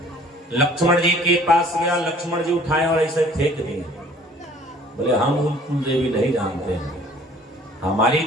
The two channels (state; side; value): normal; both; correlation 0.53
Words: लक्ष्मण जी के पास गया, लक्ष्मण जी उठाए और ऐसे फेंक दिए। बोले हम उन कुल देवी नहीं जानते हैं, हमारी